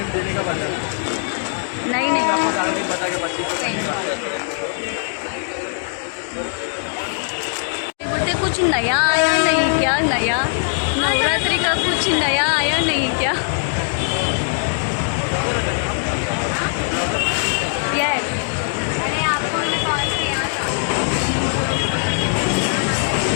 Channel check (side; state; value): right; silent; digital silence